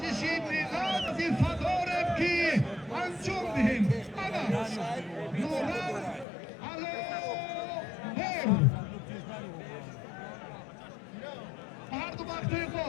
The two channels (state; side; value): drops out; right; at 6.2 s